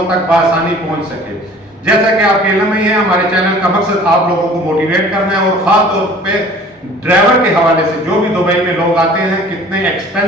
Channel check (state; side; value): normal; both; correlation 0.48